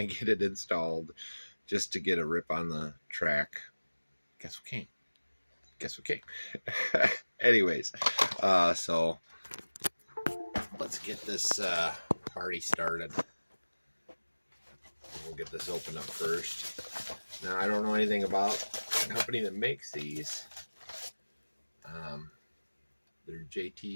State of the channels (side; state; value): both; inverted; correlation -1.00